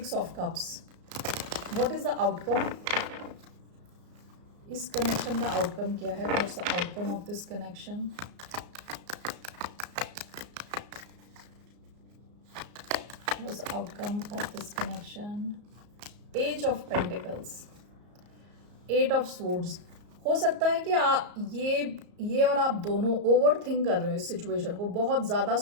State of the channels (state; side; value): late; left; 34 ms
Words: of cups. What is the outcome? इस कनेक्शन का आउटकम क्या है? What's the outcome of this connection? What's the outcome of this connection? Page of pentacles, 8 of swords. हो सकता है कि ये और आप दोनों ओवर थिंक कर रहे हो इस सिचुएशन को, बहुत ज़्यादा